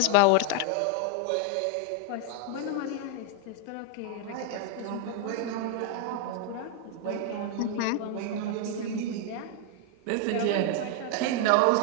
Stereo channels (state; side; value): different; both; correlation 0.01